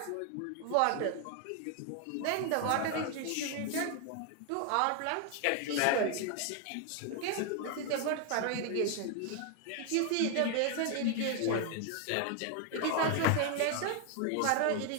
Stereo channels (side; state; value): both; different; correlation 0.00